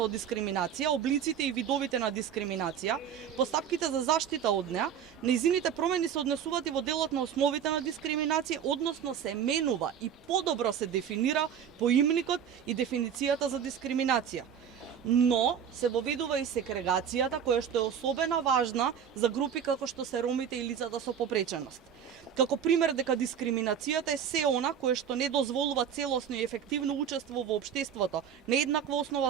дискриминација, облиците и видовите на дискриминација, постапките за заштита од неа, нејзините промени се однесуваат и во делот на основите на дискриминација, односно се менува и подобро се дефинира поимникот и дефиницијата за дискриминација. Но се воведува и сегрегацијата, која што е особено важна за групи како што се ромите и лицата со попреченост. Како пример дека дискриминацијата е се она кое што не дозволува целосно и ефективно учество во општеството на еднаква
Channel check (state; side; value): quieter; left; 8.3 dB